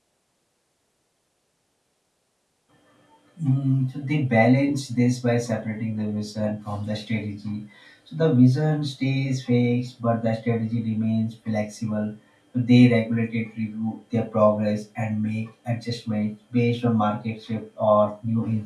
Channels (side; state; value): both; identical; correlation 1.00